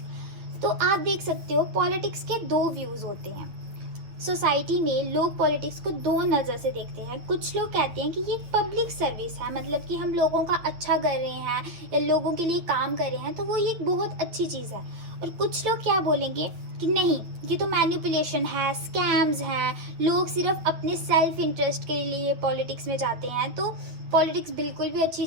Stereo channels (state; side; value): late; left; 9.1 ms